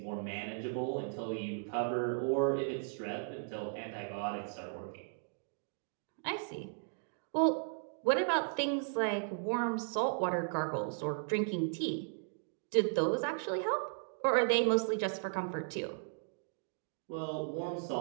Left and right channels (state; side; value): silent; left; digital silence